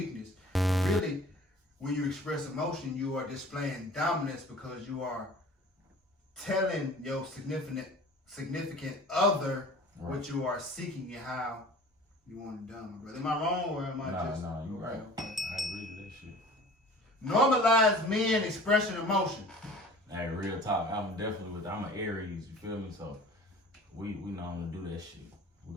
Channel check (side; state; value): both; normal; correlation 0.45